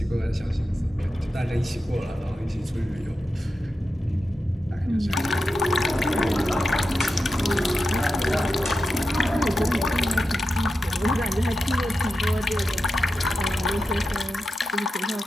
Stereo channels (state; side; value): normal; both; correlation 0.90